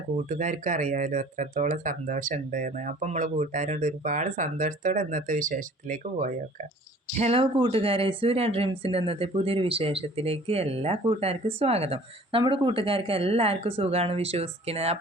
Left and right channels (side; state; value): both; normal; correlation 0.50